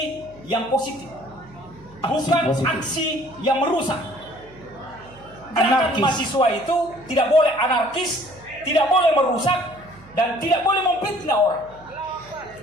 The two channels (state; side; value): noise; right; hum, 23 dB below the sound